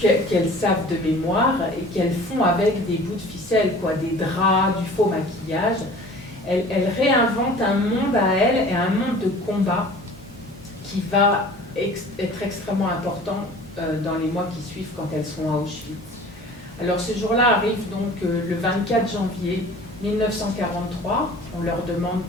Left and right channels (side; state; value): both; normal; correlation 0.45